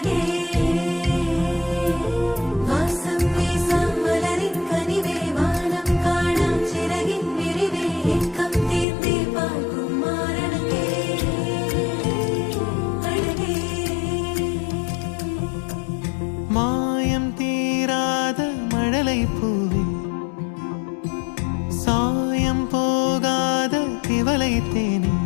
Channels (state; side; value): drops out; right; at 8.8 s